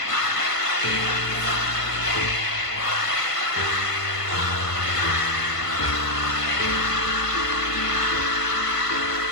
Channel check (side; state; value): right; late; 1.5 ms